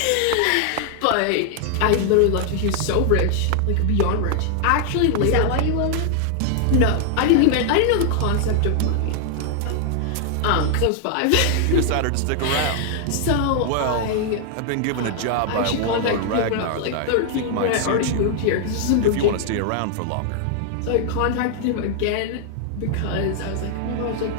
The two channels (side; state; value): both; different; correlation 0.00